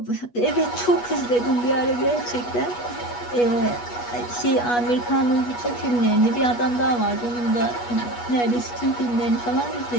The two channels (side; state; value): right; late; 8.3 ms